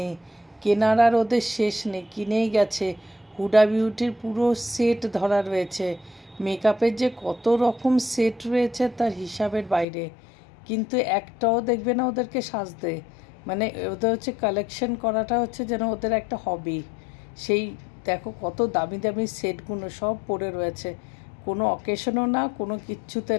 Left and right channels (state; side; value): drops out; right; at 9.9 s